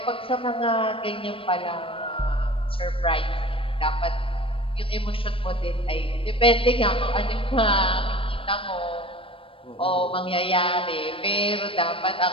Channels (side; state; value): right; late; 0.26 ms